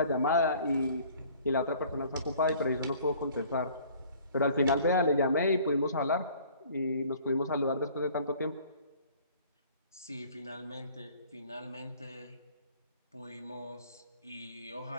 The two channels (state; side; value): inverted; both; correlation -0.53